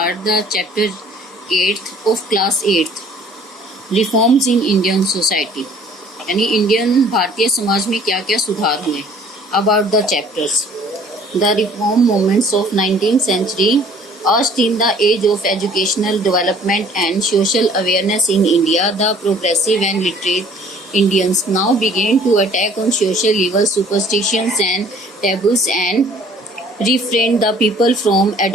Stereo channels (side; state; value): both; normal; correlation 0.54